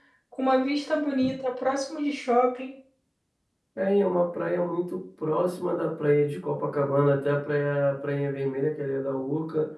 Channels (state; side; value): identical; both; correlation 1.00